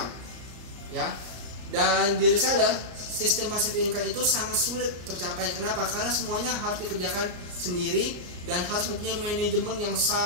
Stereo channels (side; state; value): left; late; 33 ms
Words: Ya. Dan di reseller, sistem passive income itu sangat sulit tercapai. Kenapa? Karena semuanya harus dikerjakan sendiri dan harus mempunyai manajemen yang